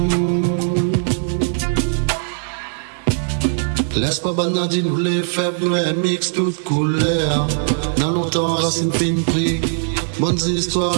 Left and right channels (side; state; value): left; silent; 59 dB below the other